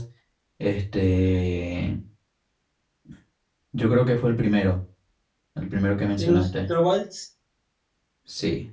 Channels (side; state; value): both; identical; correlation 1.00